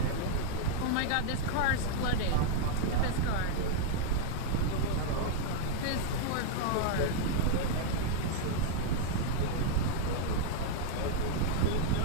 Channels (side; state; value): both; different; correlation -0.01